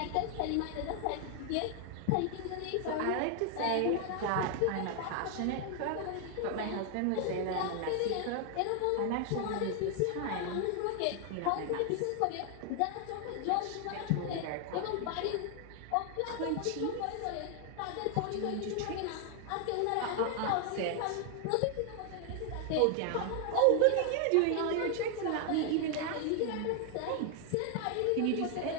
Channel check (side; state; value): both; different; correlation 0.00